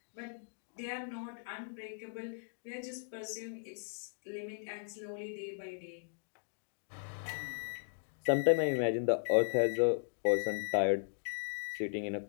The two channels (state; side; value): silent; right; digital silence